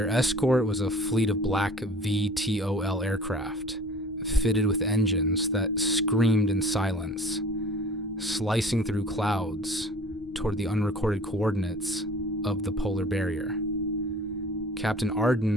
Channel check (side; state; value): both; normal; correlation 0.46